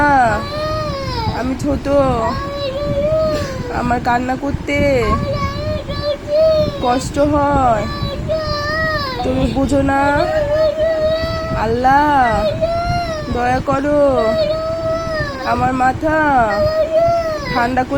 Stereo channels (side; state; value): both; identical; correlation 1.00